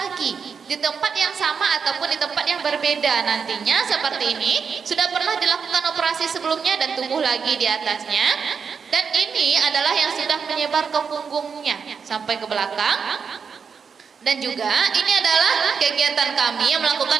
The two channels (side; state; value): left; quieter; 6.1 dB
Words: di tempat yang sama ataupun di tempat yang berbeda nantinya. Seperti ini sudah pernah dilakukan operasi sebelumnya dan tumbuh lagi di atasnya. Dan ini adalah yang sudah menyebar ke punggungnya sampai ke belakang. Dan juga ini adalah kegiatan kami yang